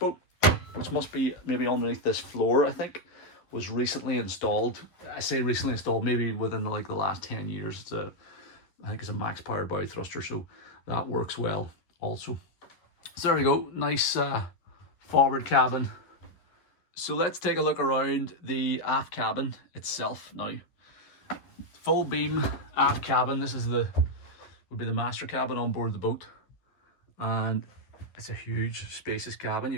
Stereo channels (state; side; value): late; right; 11 ms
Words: which must be maybe underneath this floor, I think, was recently installed. I say recently installed, maybe within the last 10 years. I think it's a max power bow thruster, so that works well also. So there we go, nice forward cabin. So let's take a look around the aft cabin itself now. Full beam aft cabin. This is would be the master cabin on board the boat, and it's a huge spacious cabin.